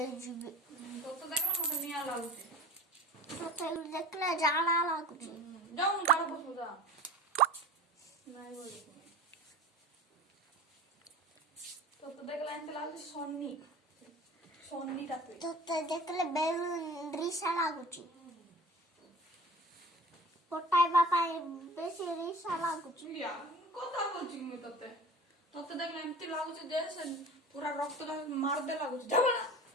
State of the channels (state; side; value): normal; both; correlation 0.38